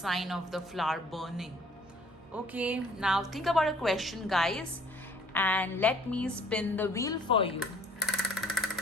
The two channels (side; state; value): both; normal; correlation 0.56